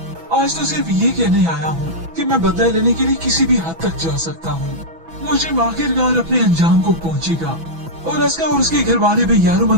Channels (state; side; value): late; left; 6.1 ms